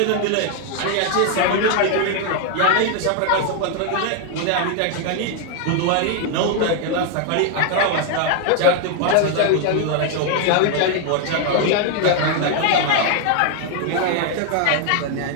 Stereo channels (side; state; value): both; different; correlation 0.00